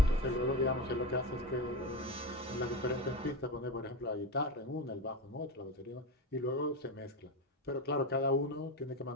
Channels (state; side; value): normal; both; correlation 0.20